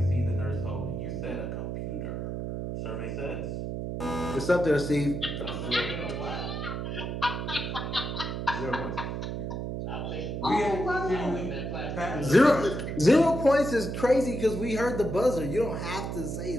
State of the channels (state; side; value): noise; right; hum, 4 dB below the sound